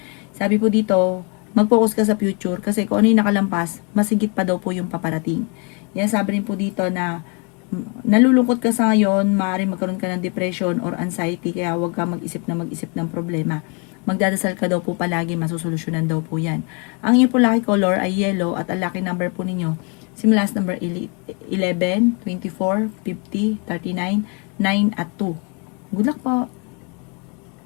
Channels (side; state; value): right; quieter; 34.1 dB